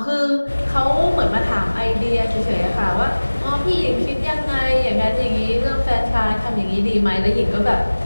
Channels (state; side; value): inverted; both; correlation -1.00